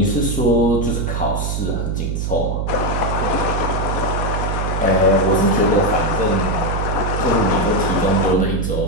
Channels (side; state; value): right; noise; hum, 1 dB below the sound